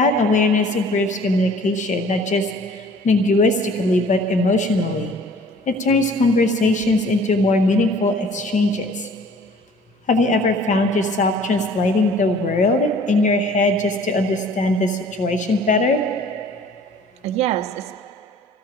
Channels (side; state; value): both; normal; correlation 0.51